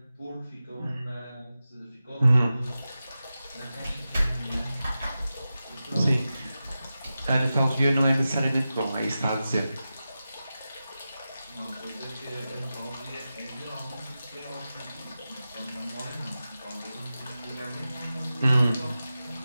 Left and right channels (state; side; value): inverted; both; correlation -0.93